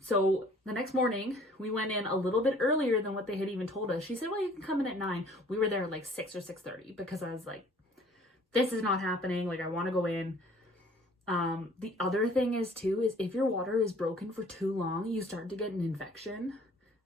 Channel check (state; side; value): normal; both; correlation 0.54